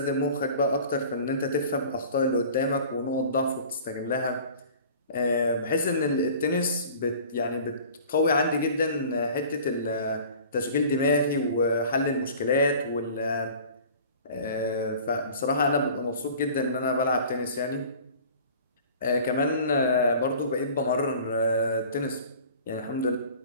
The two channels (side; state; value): both; inverted; correlation -0.45